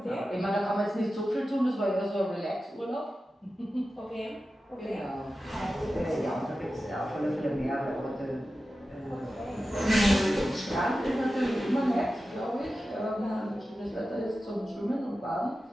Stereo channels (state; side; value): normal; both; correlation 0.93